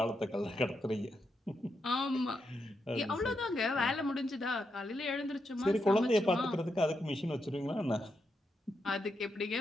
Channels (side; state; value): both; normal; correlation 0.83